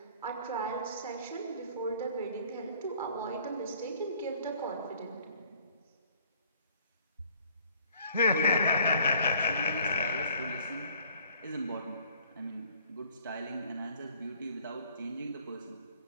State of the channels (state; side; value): inverted; both; correlation -0.56